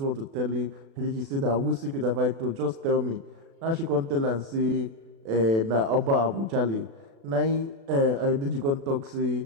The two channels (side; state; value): left; late; 36 ms